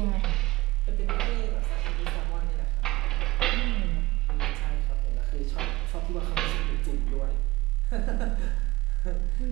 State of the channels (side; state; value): left; quieter; 19.9 dB